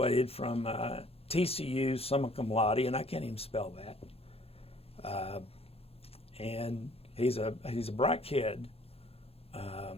from TCU summa cum laude, and I can't even spell that. And he's a bright kid.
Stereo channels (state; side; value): late; right; 0.28 ms